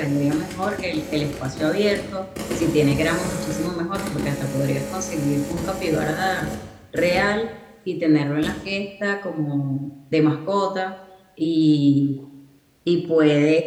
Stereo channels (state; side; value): identical; both; correlation 1.00